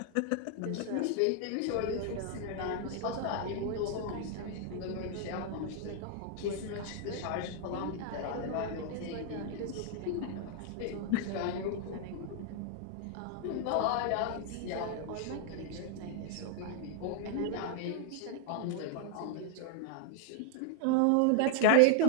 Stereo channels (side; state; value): both; different; correlation 0.00